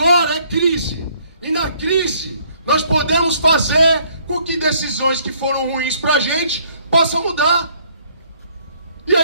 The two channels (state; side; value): inverted; both; correlation -0.64